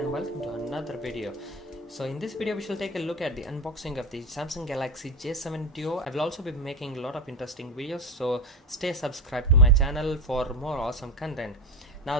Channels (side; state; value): both; normal; correlation 0.20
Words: welcome to another video. So in this video we shall take a look at the unboxing of the Samsung Galaxy J7 Duo. I will also be making a lot of interesting videos, so stay subscribed to my channel for more awesome content.